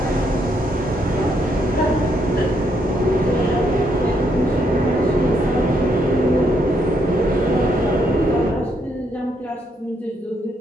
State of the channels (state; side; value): normal; both; correlation 0.75